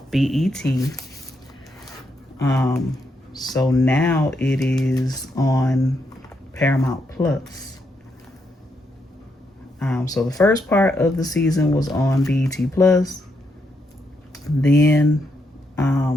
BET. So now it is on Paramount Plus. So the first part of the season was on BET Plus. Then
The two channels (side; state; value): both; normal; correlation 0.79